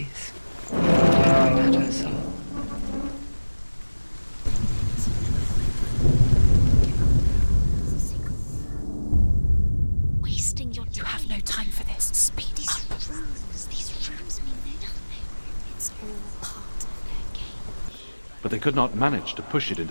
tearing at her soul. Wasting your time. You have no time for this. Speed up. These rules mean nothing. It's all part of their game. But they could not manage to push it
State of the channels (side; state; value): both; inverted; correlation -1.00